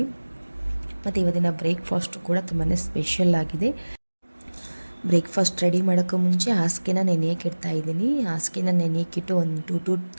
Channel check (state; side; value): inverted; both; correlation -1.00